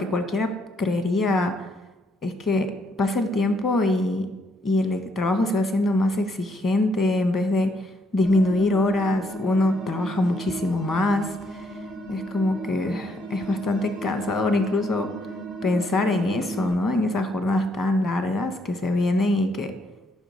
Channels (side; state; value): both; normal; correlation 0.73